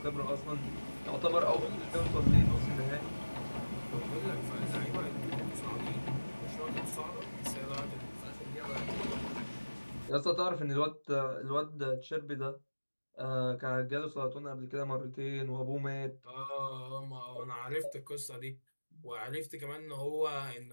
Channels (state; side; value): inverted; both; correlation -1.00